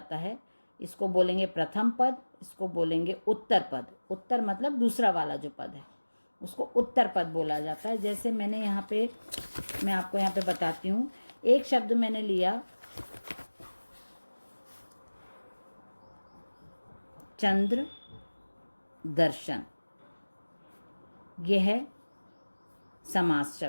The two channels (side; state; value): both; inverted; correlation -1.00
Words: है, इसको बोलेंगे प्रथम पद, इसको बोलेंगे उत्तर पद। उत्तर मतलब दूसरा वाला जो पद है उसको उत्तर पद बोला जाता है। जैसे मैं आपको यहाँ पे बताती हूँ। एक शब्द मैंने लिया चंद्र दर्शन, यह है समास